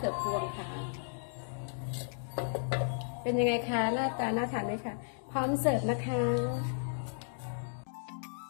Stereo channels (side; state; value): right; silent; digital silence